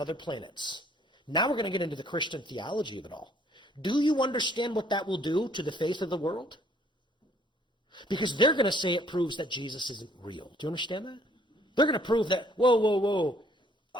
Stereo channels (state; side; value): normal; both; correlation 0.62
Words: planets. Now we're going to get into the Christian theology of it all. Do you understand what that will do to the faith of the world? Because they're going to say it proves that Jesus isn't real. Do you understand that? They're going to prove that, whoa.